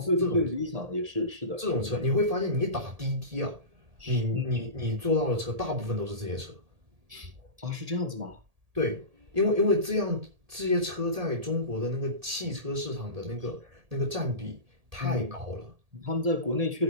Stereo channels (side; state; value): left; late; 1.8 ms